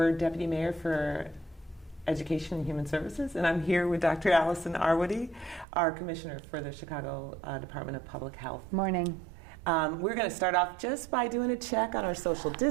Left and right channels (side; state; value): left; drops out; at 5.7 s